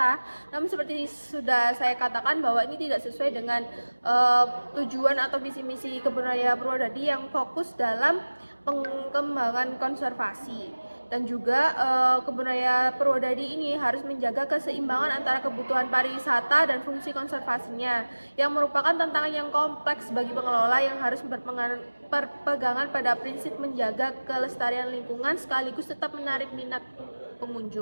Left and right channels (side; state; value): both; inverted; correlation -1.00